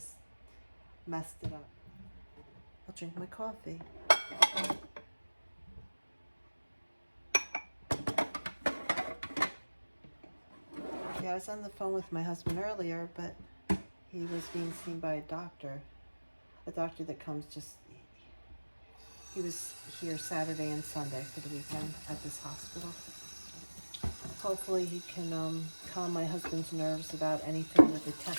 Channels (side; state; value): both; inverted; correlation -1.00